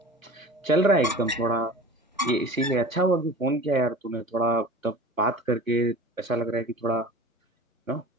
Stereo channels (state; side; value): normal; both; correlation 0.38